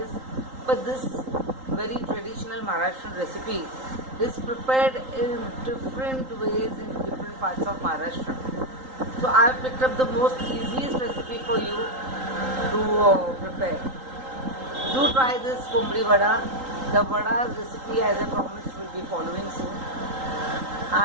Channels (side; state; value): left; late; 3.8 ms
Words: is. But this very traditional Maharashtrian recipe is prepared in different ways in different parts of Maharashtra. So I have picked up the most easiest recipe for you to prepare. Do try this Kumbhadi Vada. The Vada's recipe, as I promised, will be following soon.